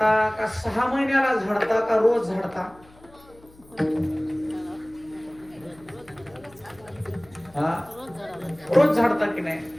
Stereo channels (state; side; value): noise; left; hum, 26 dB below the sound